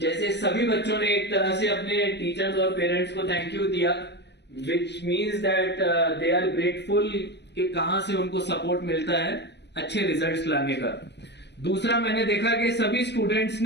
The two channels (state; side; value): late; right; 0.50 ms